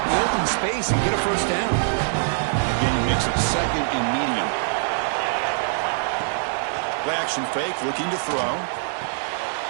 in the open space and get a first down. The game makes it second and medium. Play action fake, looking to throw.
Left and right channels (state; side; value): silent; left; 63 dB below the other